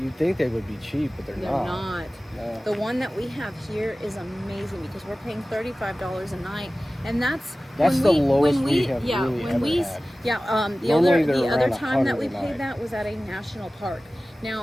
you'd think they would be cheap, but they're not. No. The one that we have here is amazing because we're paying $35 a night, and that's the lowest we have really ever had. The other time that we paid that was at a national park.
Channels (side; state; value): both; normal; correlation 0.97